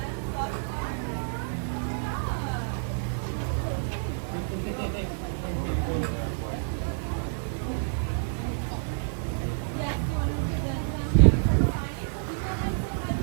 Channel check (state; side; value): silent; left; digital silence